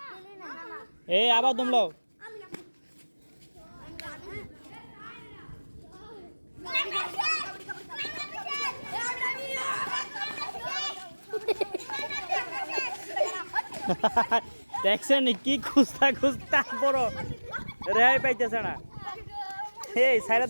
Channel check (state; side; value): inverted; both; correlation -1.00